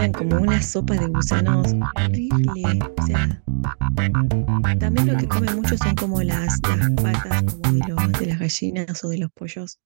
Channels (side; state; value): left; silent; digital silence